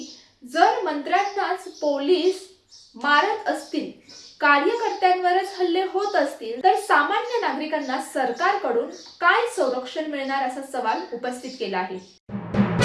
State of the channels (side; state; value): both; identical; correlation 1.00